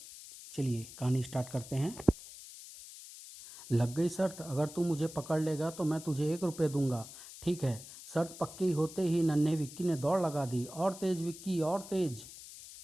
चलिए कहानी स्टार्ट करते हैं। लग गई शर्त, अगर तू मुझे पकड़ लेगा तो मैं तुझे 1 रुपये दूंगा। ठीक है। शर्त पक्की होते ही नन्हे विक्की ने दौड़ लगा दी। और तेज विक्की, और तेज।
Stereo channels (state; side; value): noise; left; hiss, 15 dB below the sound